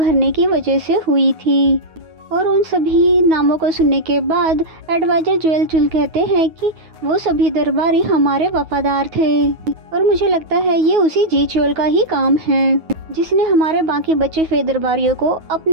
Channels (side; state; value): left; late; 9.4 ms